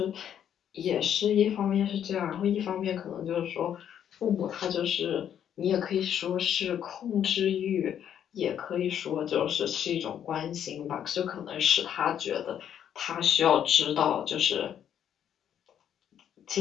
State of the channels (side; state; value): right; quieter; 9.5 dB